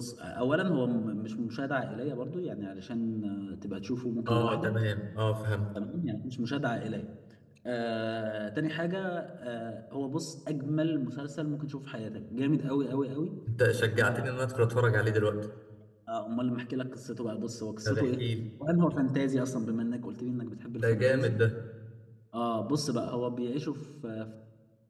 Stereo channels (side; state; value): both; identical; correlation 1.00